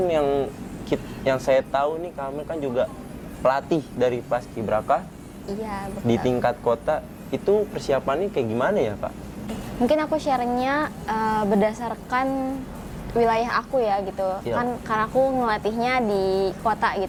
yang saya tahu nih, Kak Amel kan juga pelatih dari Paskibraka. Iya, betul. Di tingkat kota itu persiapannya kayak gimana ya, Kak? Mungkin aku sharingnya berdasarkan wilayah aku ya gitu. Iya. Kan karena aku ngelatihnya di kota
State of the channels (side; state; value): both; identical; correlation 1.00